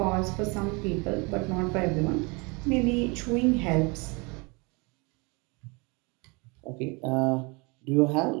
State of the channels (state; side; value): quieter; left; 28.8 dB